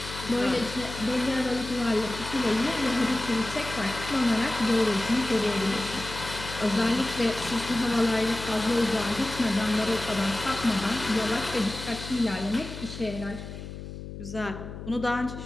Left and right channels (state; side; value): noise; left; hum, 10 dB below the sound